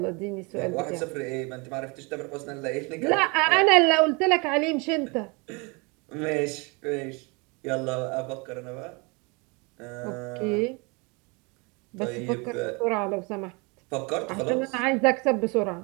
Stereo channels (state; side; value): quieter; left; 29.5 dB